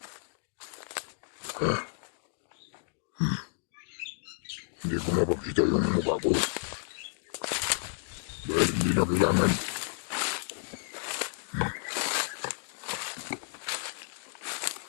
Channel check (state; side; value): silent; right; digital silence